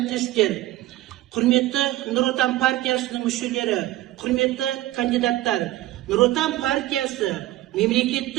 құрметті Нұр Отан партиясының мүшелері, құрметті кандидаттар, Нұр Отан партиясы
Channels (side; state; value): left; quieter; 16.3 dB